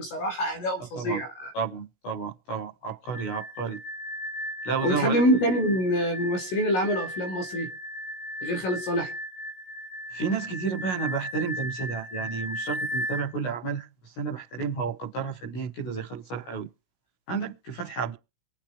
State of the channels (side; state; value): right; late; 16 ms